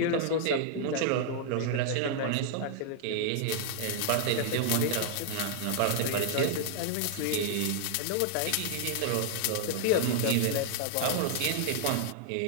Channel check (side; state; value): both; different; correlation 0.00